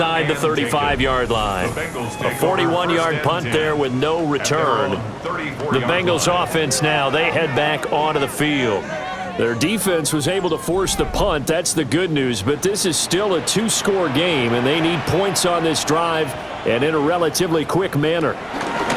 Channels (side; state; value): both; identical; correlation 1.00